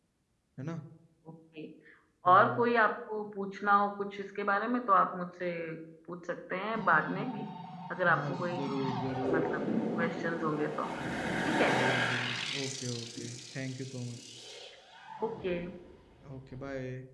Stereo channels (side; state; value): both; identical; correlation 1.00